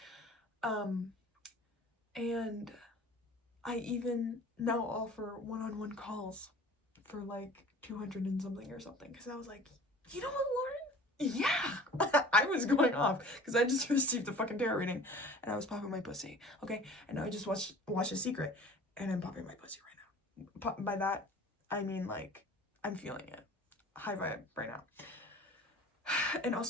and I even now offer one-on-one calls for like 200 and something or something, because I was like, you know what, Lauren? Yeah. I was going off because I just received a fucking tarot reading and I was popping my pussy, okay? And I just watched A Secret and I'm popping my pussy right now. By that, I mean like, I'm feeling it. High vibe right now. And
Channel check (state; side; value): normal; both; correlation 0.44